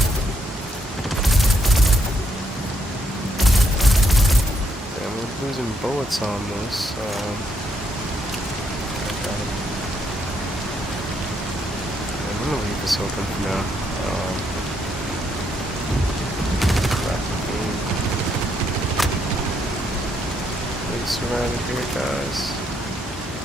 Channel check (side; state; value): both; normal; correlation 0.75